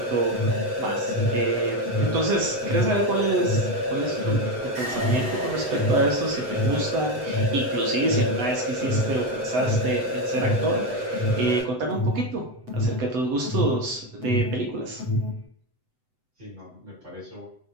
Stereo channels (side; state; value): left; late; 7.9 ms